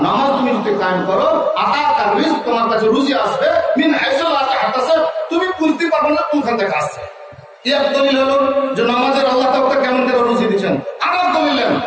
নামাজ তুমি যদি কায়েম করো, আতাকা রিজক, তোমার কাছে রুজি আসবে, মিন হাইথু লা তাহতাসিব, তুমি বুঝতে পারবে না কোনখান থেকে আসছে। এক দলিল হলো যে নামাজের আল্লাহ তাআলা কেমন করে রুজি দিচ্ছেন। আরেক দলিল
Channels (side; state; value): both; identical; correlation 1.00